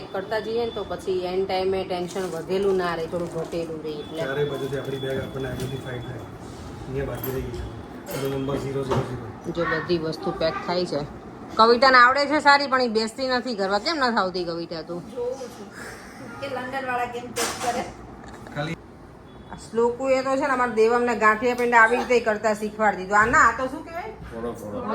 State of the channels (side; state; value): both; identical; correlation 1.00